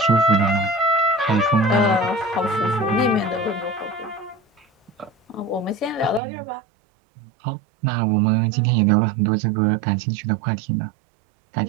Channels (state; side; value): drops out; left; at 6.2 s